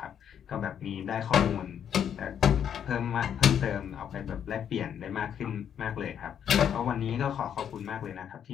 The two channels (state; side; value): quieter; right; 8.8 dB